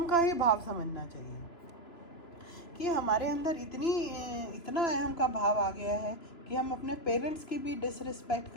का ही भाव समझना चाहिए कि हमारे अंदर इतना अहम का भाव आ गया है कि हम अपने पेरेंट्स की भी डिसरिस्पेक्ट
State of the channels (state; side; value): late; right; 2.9 ms